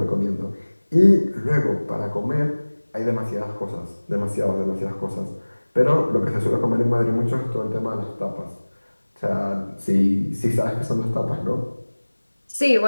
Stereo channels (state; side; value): inverted; both; correlation -1.00